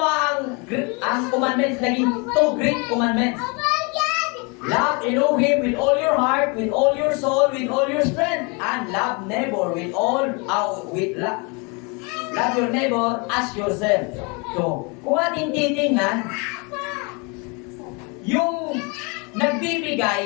ang commandments, naging two great commandments. Love Elohim with all your heart, with all your soul, with all your strength, and love neighbor with all love your neighbor as yourself. So, kung ating titingnan, yung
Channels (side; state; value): right; quieter; 31.2 dB